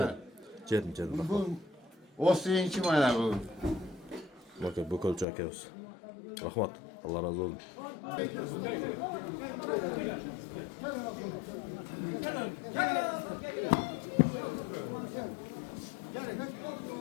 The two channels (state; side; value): drops out; right; at 5.2 s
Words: Jedim. Bu o'siyinchi mana bu. Bakın bu kolça akıyoruz. Rahmat. Allah razı olsun.